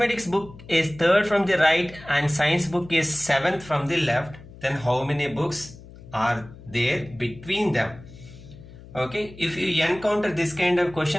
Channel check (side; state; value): left; noise; hum, 18 dB below the sound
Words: book is third from the right and science book is 7th from the left, then how many books are there between them? Okay, if you encounter this kind of